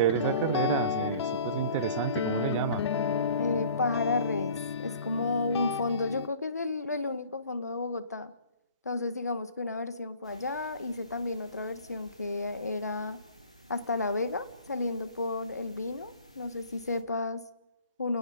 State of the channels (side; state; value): both; inverted; correlation -0.48